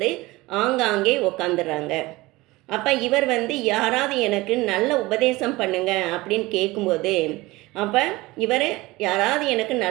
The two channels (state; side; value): quieter; left; 20.5 dB